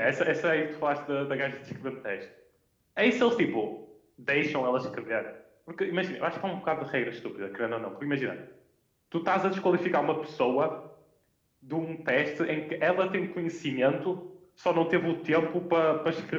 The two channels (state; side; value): identical; both; correlation 1.00